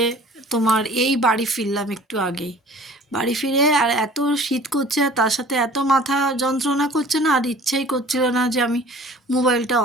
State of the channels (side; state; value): both; normal; correlation 0.48